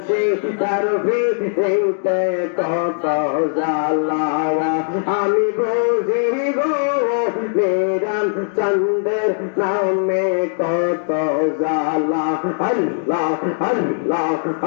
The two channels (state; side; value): silent; right; digital silence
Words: তারফি হইতে কত জ্বালা আমি বুঝি গো মেরান চন্দের নামে কত জ্বালা আল্লাহ আল্লাহ